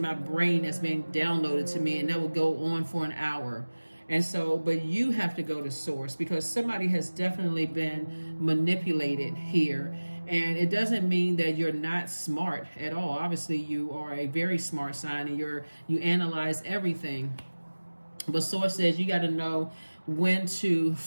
brain that's being downloaded to me, and that will go on for an hour. And so, but you have to go to source, because somebody has definitely been manipulated here. And it doesn't mean that you're not smart at all. Obviously, you are a very smart sign, and you analyze everything. But source says you got to know when to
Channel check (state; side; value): inverted; both; correlation -1.00